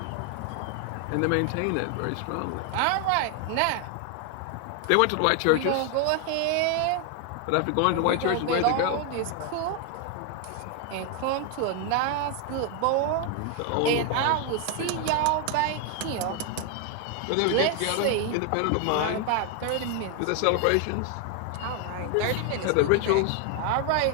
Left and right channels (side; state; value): both; different; correlation 0.01